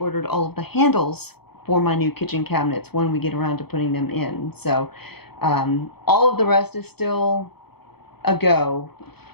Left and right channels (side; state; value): right; late; 0.97 ms